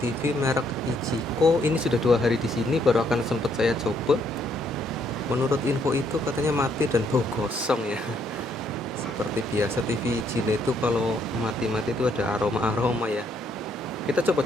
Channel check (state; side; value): normal; both; correlation 0.71